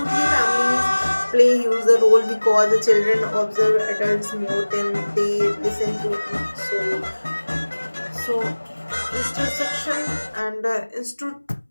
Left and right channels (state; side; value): inverted; both; correlation -1.00